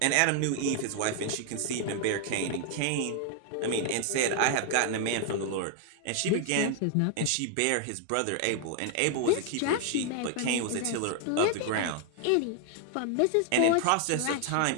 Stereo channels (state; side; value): different; both; correlation 0.00